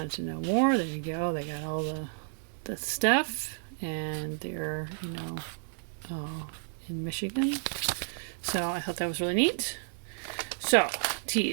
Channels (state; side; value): silent; left; digital silence